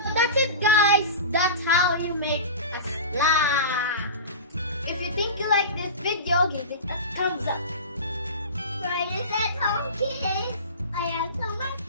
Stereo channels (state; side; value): inverted; both; correlation -0.30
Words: That's it, guys. That's how you make a slime. If you think you like this video, give it a thumbs up. Fridays at home, kids. I have so much